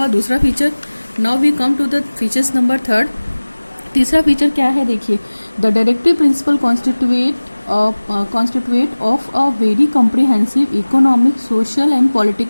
दूसरा feature. Now we come to the features number 3। तीसरा फीचर क्या है, देखिए, the directory principle constitute of a very comprehensive economic, social and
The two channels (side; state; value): both; inverted; correlation -1.00